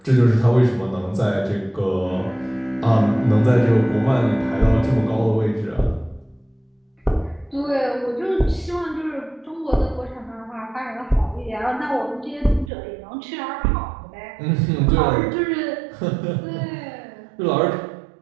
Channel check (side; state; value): left; drops out; at 12.7 s